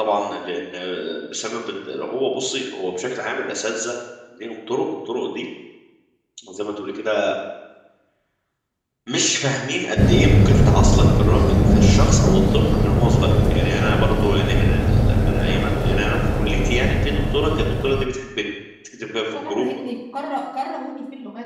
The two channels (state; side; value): identical; both; correlation 1.00